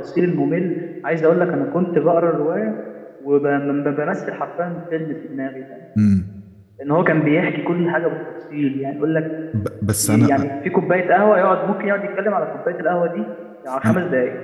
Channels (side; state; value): both; identical; correlation 1.00